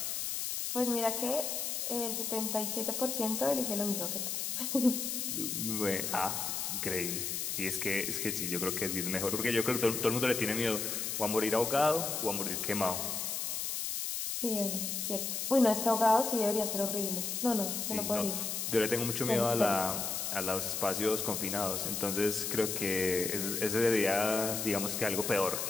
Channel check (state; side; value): noise; left; hiss, 2 dB below the sound